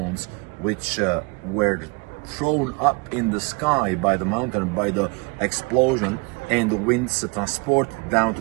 which were thrown up in the sky by the mountain, by the explosion, and the winds transported down to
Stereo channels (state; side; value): quieter; left; 30.2 dB